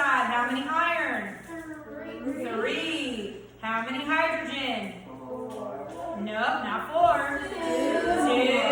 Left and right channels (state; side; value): identical; both; correlation 1.00